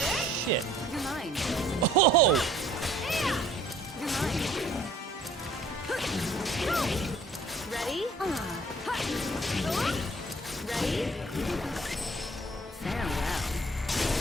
You're mine. Oh! You're mine. Ready? Ready? Farewell.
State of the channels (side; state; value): both; normal; correlation 0.56